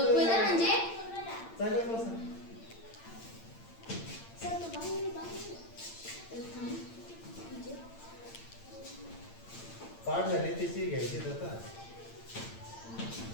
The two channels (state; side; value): late; right; 8.8 ms